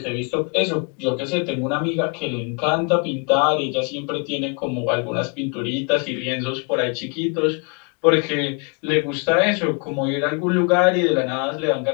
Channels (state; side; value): quieter; right; 35.5 dB